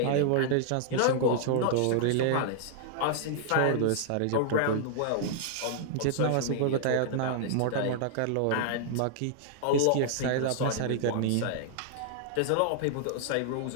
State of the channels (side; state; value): both; different; correlation -0.01